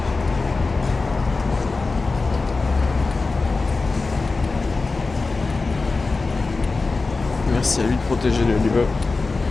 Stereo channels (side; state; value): right; quieter; 3.8 dB